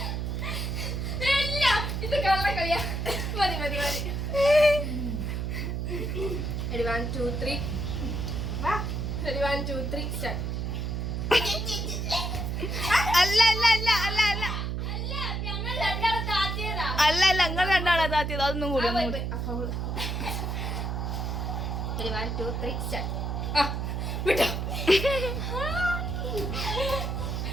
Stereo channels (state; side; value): noise; right; hum, 2 dB below the sound